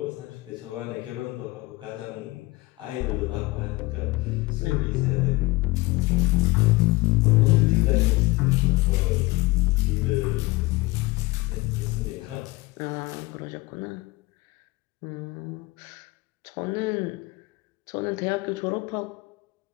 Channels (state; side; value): quieter; right; 21.9 dB